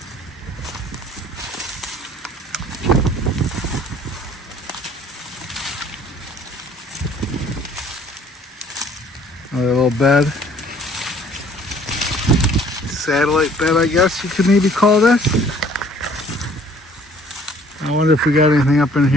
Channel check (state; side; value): normal; both; correlation 0.56